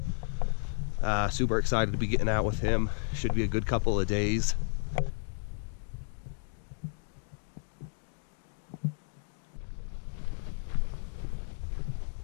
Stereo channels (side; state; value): right; silent; 56 dB below the other